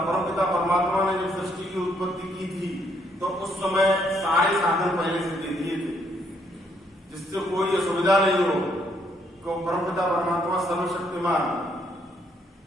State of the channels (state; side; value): normal; both; correlation 0.71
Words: परमपिता परमात्मा ने जब सृष्टि की उत्पत्ति की थी तो उस समय सारे साधन पहले से दे दिए थे जिससे कोई असुविधा नहीं हो। क्यों? परमपिता परमात्मा सर्वशक्तिमान